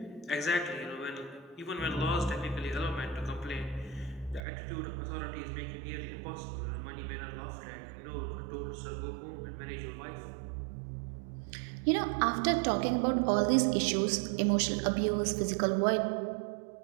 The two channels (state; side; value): drops out; left; at 4.4 s